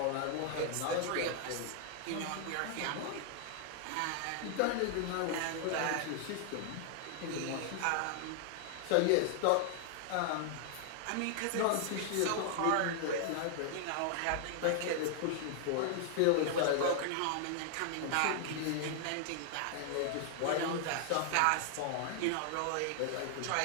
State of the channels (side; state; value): both; different; correlation 0.00